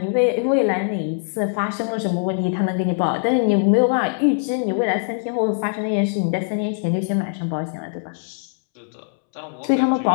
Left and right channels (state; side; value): silent; right; 64 dB below the other